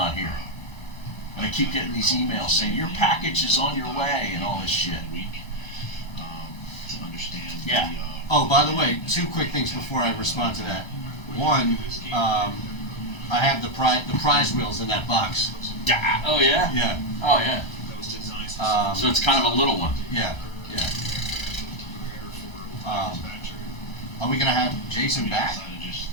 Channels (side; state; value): right; late; 1.3 ms